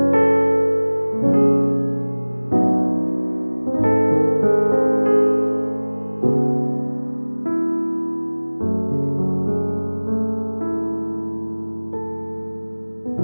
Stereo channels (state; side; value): inverted; both; correlation -1.00